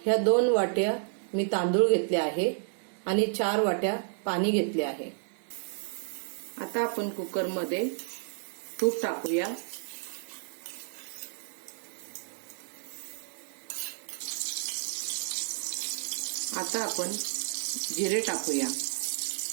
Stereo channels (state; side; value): silent; left; digital silence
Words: ह्या 2 वाट्या मी तांदूळ घेतले आहे आणि 4 वाट्या पाणी घेतले आहे। आता आपण कुकरमध्ये तूप टाकूया। आता आपण जिरे टाकूया,